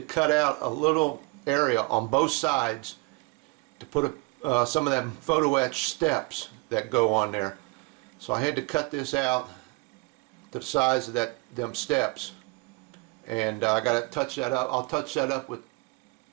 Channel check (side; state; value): left; quieter; 27.5 dB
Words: cut out a little area on both sides to put some of them photo etch steps that go on there. So I had to cut this out to the size of them steps, and I got to touch that up. I'll touch that up with